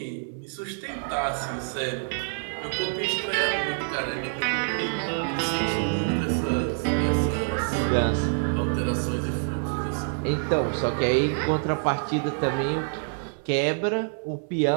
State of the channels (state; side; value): silent; left; 61 dB below the other